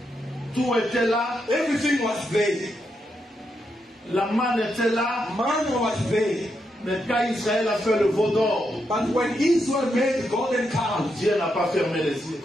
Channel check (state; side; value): normal; both; correlation 0.82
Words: Tout était là. Everything was there. La manne était là. Manna was there. Mais quand Israël a fait le veau d'or, But when Israel made the golden calf, Dieu n'a pas fermé les yeux.